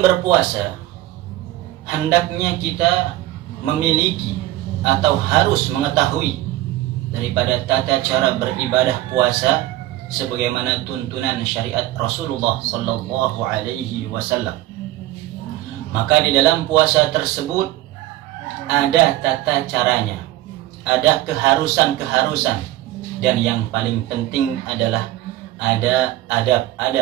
hendaknya kita memiliki atau harus mengetahui daripada tata cara beribadah puasa sebagaimana tuntunan syariat Rasulullah sallallahu alaihi wasallam. Maka di dalam puasa tersebut ada tata caranya, ada keharusan-keharusan, dan yang paling penting adalah ada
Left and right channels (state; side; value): quieter; left; 15.5 dB